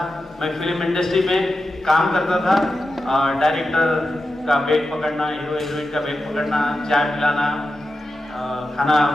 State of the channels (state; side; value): normal; both; correlation 0.91